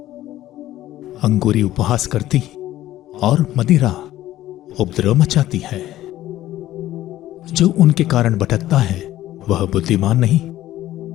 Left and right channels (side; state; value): right; quieter; 14.3 dB